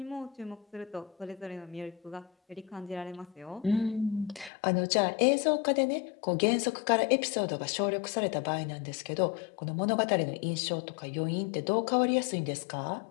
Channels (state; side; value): drops out; right; at 4.5 s